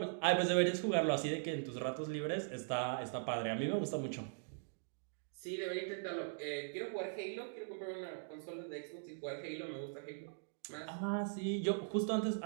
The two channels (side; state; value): left; silent; digital silence